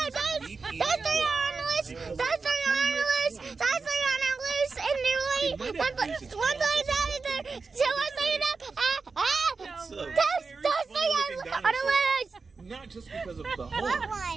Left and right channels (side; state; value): left; quieter; 4.5 dB